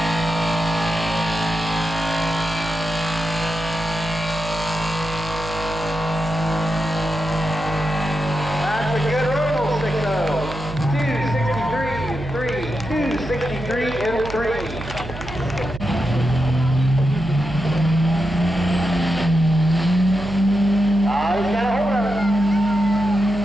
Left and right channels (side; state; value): right; noise; hum, 11 dB below the sound